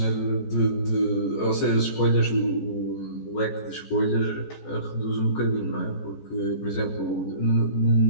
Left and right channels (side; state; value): right; late; 14 ms